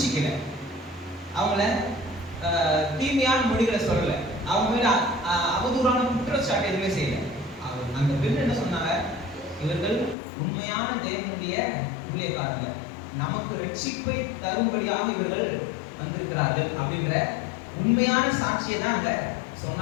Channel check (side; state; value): right; drops out; at 10.2 s